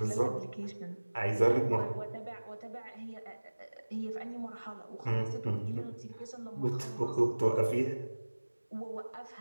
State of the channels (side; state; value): both; inverted; correlation -1.00